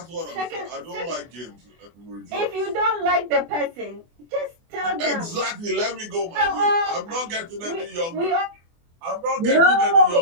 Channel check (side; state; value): left; late; 24 ms